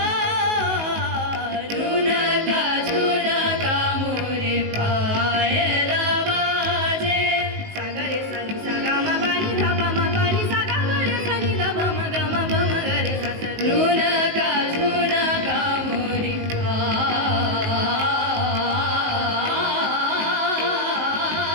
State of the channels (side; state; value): left; late; 19 ms